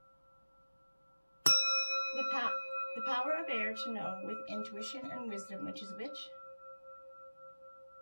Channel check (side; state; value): both; inverted; correlation -1.00